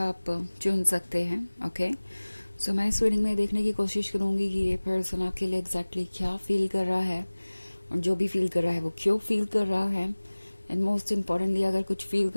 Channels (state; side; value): inverted; both; correlation -1.00